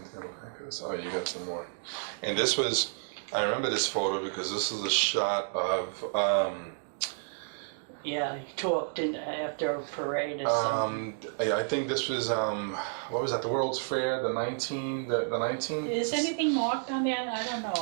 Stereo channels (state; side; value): silent; left; digital silence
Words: come back to this. Oh, you got some more. And this was, I remember this photo because this is a shot of, Yeah, he talked after a parade or something. I think this was, what was that, the World's Fair, the 19. Is anything marked on there? I don't know